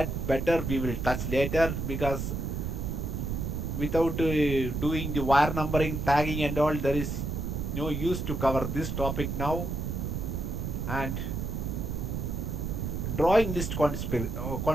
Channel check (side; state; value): right; noise; rumble, 3 dB below the sound